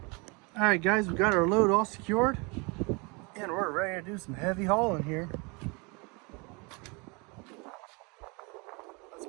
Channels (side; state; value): left; quieter; 29.5 dB